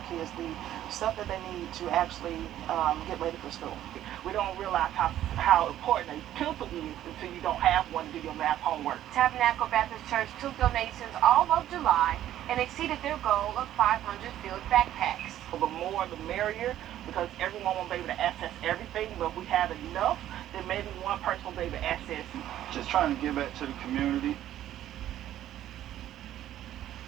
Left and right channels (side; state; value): left; quieter; 12.3 dB